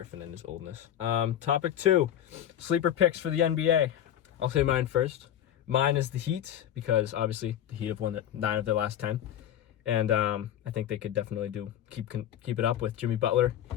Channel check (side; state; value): right; quieter; 10.9 dB